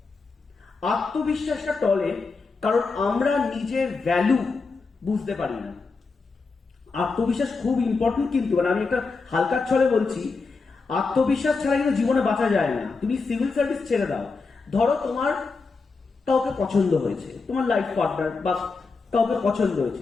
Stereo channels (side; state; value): right; quieter; 4.3 dB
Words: আত্মবিশ্বাসটা টলে কারণ আমরা নিজের ভ্যালু বুঝতে পারি না। আত্মবিশ্বাস খুব ইম্পর্টেন্ট, কিন্তু মানে আমি একটা হালকার ছলে বলছি, আত্মবিশ্বাস ছাড়া কিন্তু জীবনে বাঁচা যায় না। তুমি সিভিল সার্ভিস ছেড়ে দাও, ধরো তোমার কাউকে পছন্দ হয়েছে, তোমার লাইফ পার্টনার বা কাউকে পছন্দ